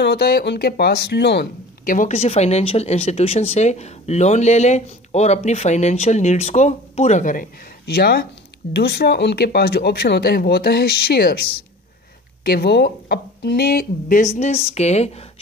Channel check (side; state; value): both; normal; correlation 0.41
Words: होता है उनके पास लोन, कि वो किसी फाइनेंशियल इंस्टीट्यूशन से लोन ले लें और अपनी फाइनेंशियल नीड्स को पूरा करें। या दूसरा उनके पास जो ऑप्शन होता है वो होता है शेयर्स, कि वो अपने बिजनेस के